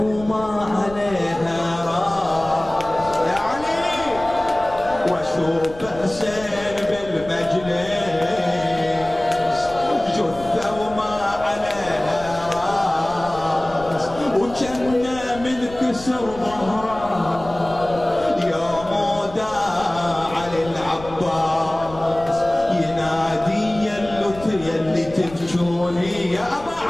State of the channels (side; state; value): left; noise; rumble, 16 dB below the sound